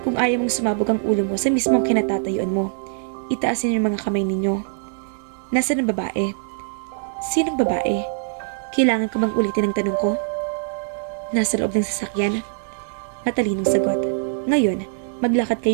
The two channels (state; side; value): silent; left; digital silence